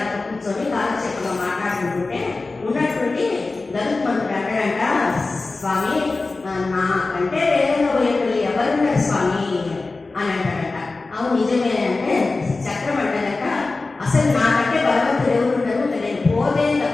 దాంట్లో కూర్చొని కాలక్షేపంగా మాట్లాడుకుంటుంటే ఉన్నటువంటి గరుత్మంతుడు అంటాడంట, స్వామి నాకంటే వేగంగా పోయేటోళ్ళు ఎవరున్నారు స్వామి అని అంటాడంట. అవును నిజమే అంటే చక్రం అంటాడంట, అసలు నాకంటే బలవంతుడు ఎవరున్నారు, నేను పోతే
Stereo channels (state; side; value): quieter; right; 3.6 dB